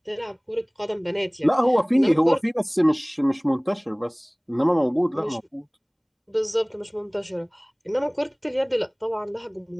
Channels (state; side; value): identical; both; correlation 1.00